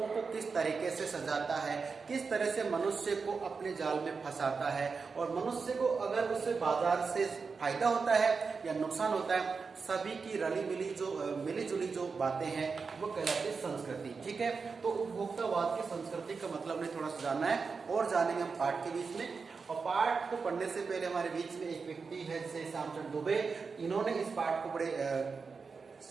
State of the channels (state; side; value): quieter; left; 4.9 dB